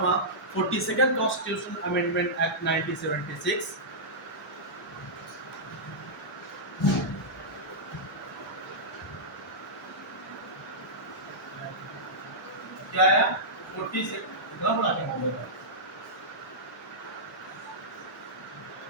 42nd कॉन्स्टिट्यूशन अमेंडमेंट एक्ट 1976 क्या आया 40 से कितना बड़ा क्या हो गया,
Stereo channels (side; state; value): both; normal; correlation -0.12